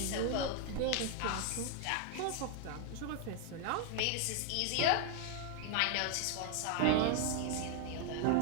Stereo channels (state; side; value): different; both; correlation 0.00